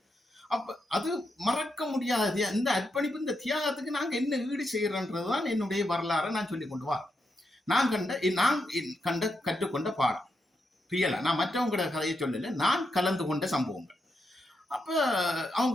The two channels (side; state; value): both; normal; correlation 0.84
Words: அப்ப அது மறக்க முடியாது. இந்த அர்ப்பணிப்பு, இந்த தியாகத்துக்கு நாங்க என்ன ஈடு செய்யறோன்றதுதான் என்னுடைய வரலாறை நான் சொல்லி கொண்டு வா. நான் கண்ட கற்றுக்கொண்ட பாடம் ரியலா. நான் மற்றவங்களோட கதையை சொல்லல, நான் கலந்து கொண்ட சம்பவங்கள். அப்ப அவன்